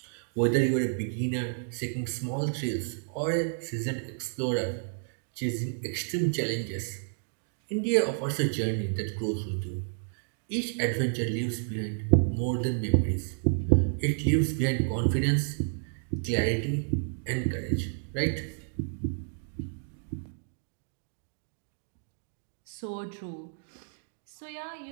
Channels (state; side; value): silent; left; digital silence